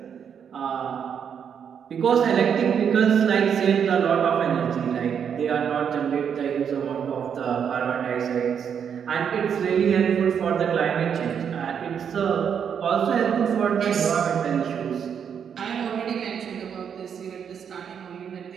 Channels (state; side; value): quieter; left; 7.7 dB